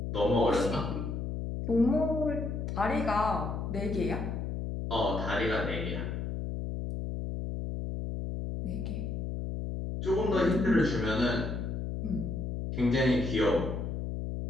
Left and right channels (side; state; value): left; noise; hum, 3 dB below the sound